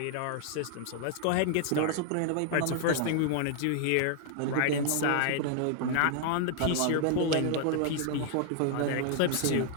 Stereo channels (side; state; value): both; different; correlation 0.00